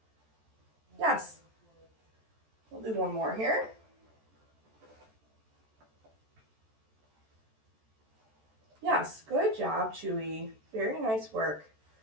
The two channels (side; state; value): left; late; 14 ms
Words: Yes. We'll do one more here. Yes, good job, Chewie. Very nice work.